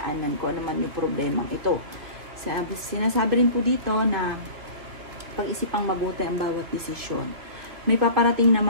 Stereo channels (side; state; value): left; late; 3.1 ms